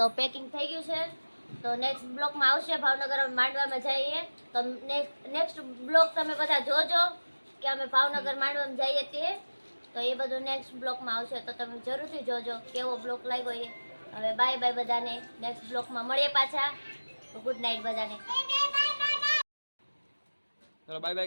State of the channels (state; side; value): inverted; both; correlation -1.00